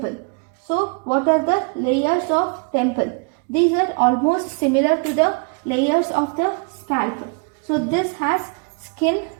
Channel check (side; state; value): left; quieter; 37.3 dB